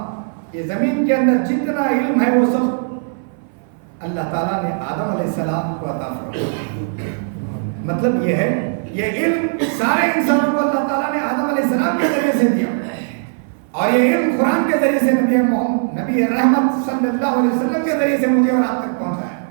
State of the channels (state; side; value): silent; left; 61 dB below the other